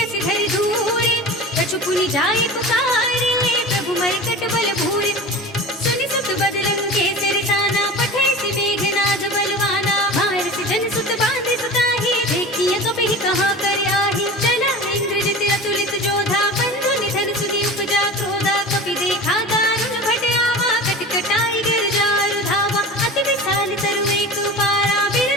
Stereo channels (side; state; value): both; normal; correlation 0.34